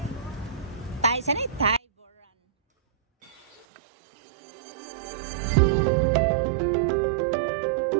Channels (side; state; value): left; drops out; at 3.7 s